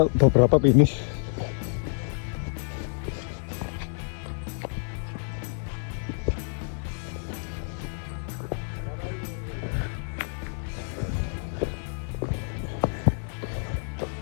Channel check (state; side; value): silent; right; digital silence